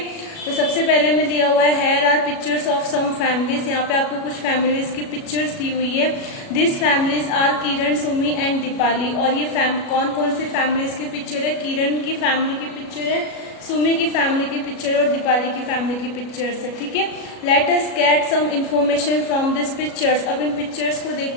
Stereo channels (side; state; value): right; late; 37 ms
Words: तो सबसे पहले में दिया हुआ है here are pictures of some families. यहाँ पे आपको कुछ फैमिलीज की पिक्चर्स दी हुई है। This families are Kiran, Sumi and Deepali. और ये कौन कौन सी फैमिलीज की पिक्चर है? किरण की फैमिली की पिक्चर है, सुमी की फैमिली की पिक्चर और दीपाली की फैमिली की पिक्चर्स है। ठीक है, let us get some information from this pictures. अब इन पिक्चर्स को देख